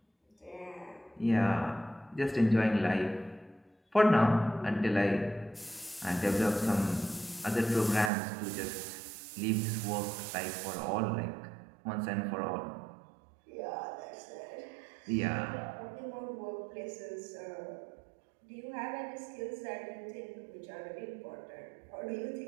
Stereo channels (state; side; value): drops out; left; at 8.1 s